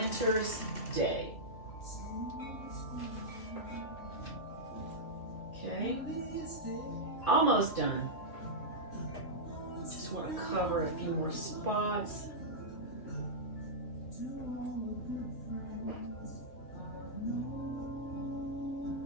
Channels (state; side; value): late; right; 2.4 ms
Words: day. Okay. Almost done. Just want to cover a few more spots.